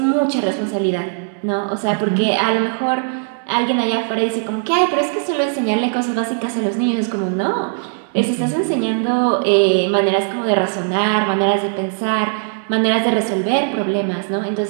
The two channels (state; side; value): silent; left; digital silence